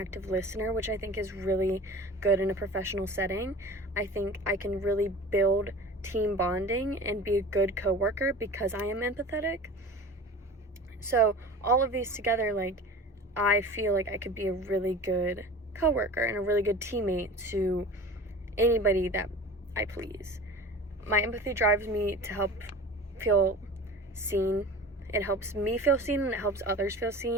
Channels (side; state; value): both; normal; correlation 0.38